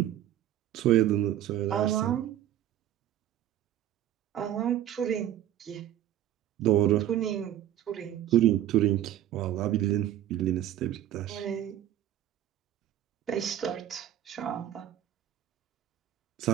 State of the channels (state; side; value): quieter; left; 12.0 dB